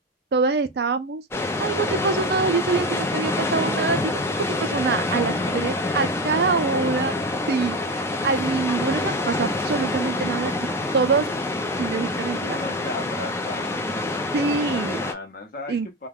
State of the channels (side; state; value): both; normal; correlation 0.21